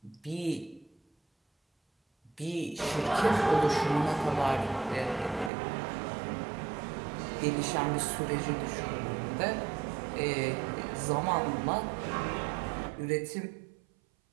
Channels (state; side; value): drops out; left; at 5.5 s